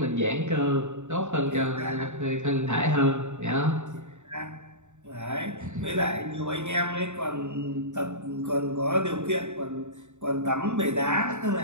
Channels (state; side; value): late; left; 0.84 ms